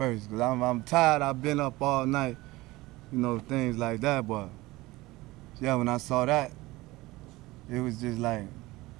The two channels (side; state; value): left; quieter; 19.9 dB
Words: because I'm tired. I've been up all night, you know, things like that. But yeah, when I saw that, it was just like,